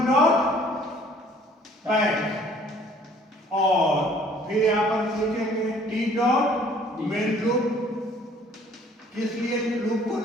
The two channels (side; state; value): both; normal; correlation 0.56